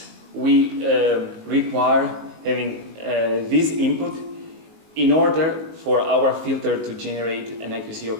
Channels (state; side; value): late; left; 19 ms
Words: we require having this input in order for our filter to generate an IQC